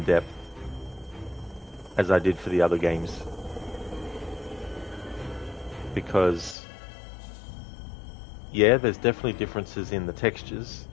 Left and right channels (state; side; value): drops out; right; at 6.6 s